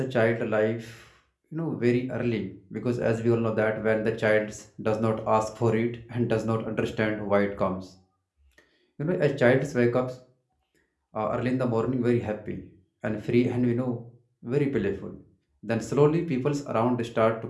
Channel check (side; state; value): both; identical; correlation 1.00